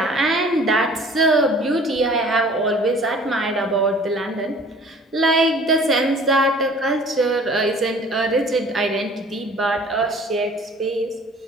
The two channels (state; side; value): normal; both; correlation 0.49